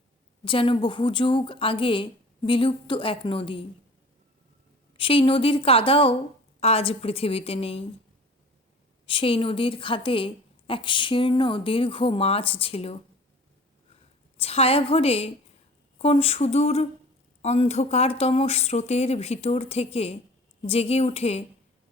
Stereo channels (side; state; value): both; normal; correlation 0.44